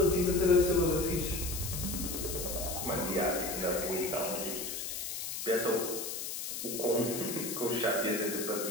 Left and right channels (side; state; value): left; noise; hiss, 5 dB below the sound